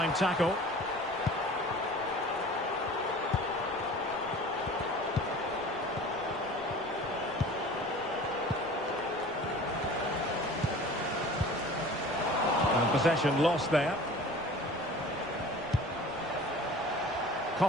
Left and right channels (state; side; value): noise; right; rumble, 21 dB below the sound